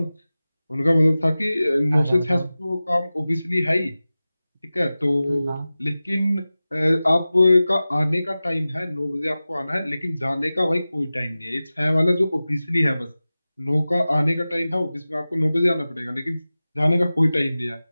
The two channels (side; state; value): both; inverted; correlation -0.96